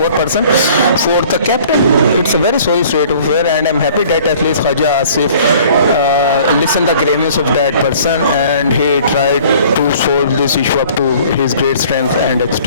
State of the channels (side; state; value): both; inverted; correlation -0.52